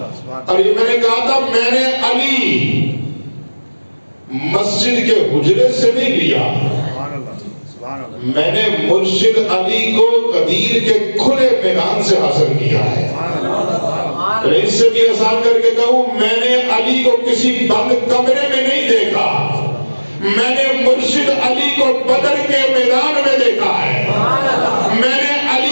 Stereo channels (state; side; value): inverted; both; correlation -1.00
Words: اور یہ میں نے کہا تھا میں نے علی مسجد کے حجرے سے نہیں لیا، میں نے مرشد علی کو غدیر کے کھلے میدان سے حاصل کیا ہے۔ اس سے بھی آسان کر کے کہوں، میں نے علی کو کسی بند کمرے میں نہیں دیکھا، میں نے مرشد علی کو بدر کے میدان میں دیکھا ہے۔ میں نے